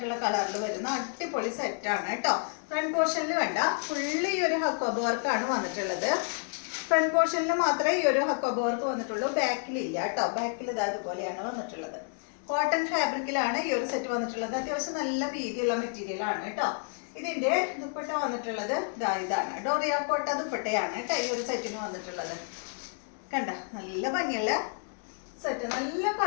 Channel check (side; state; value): right; silent; 58 dB below the other